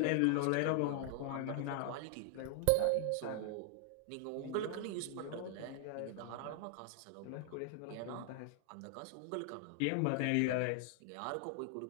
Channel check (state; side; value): different; both; correlation 0.00